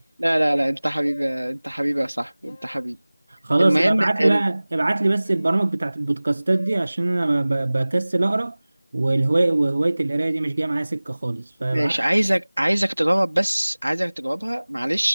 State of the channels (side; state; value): both; inverted; correlation -1.00